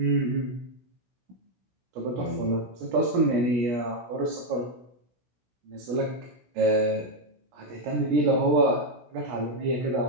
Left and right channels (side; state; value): left; late; 16 ms